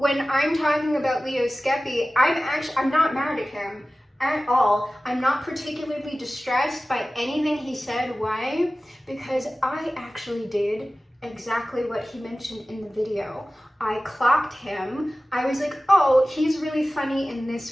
I'm talking about Leo Skepi, I'm not mad at him at all. I'm not particularly distressed by anything he said. Why? Because I actually did exactly what he mentioned in the video. I clocked him. I was like, oh, he's really funny in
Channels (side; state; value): both; normal; correlation 0.96